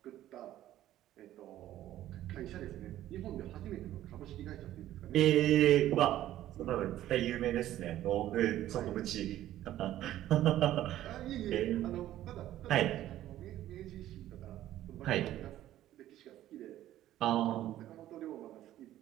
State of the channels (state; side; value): quieter; left; 13.3 dB